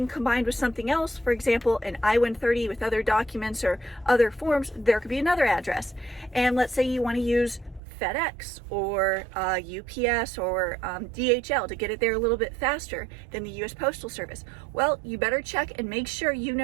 combined with something else, for example, an I-130 with other documents or other forms, there could be another address. And let's say you want to use FedEx or UPS or DHL to get it there a little bit faster than the US Postal Service. Well, you better check and make sure you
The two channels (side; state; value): left; drops out; at 7.8 s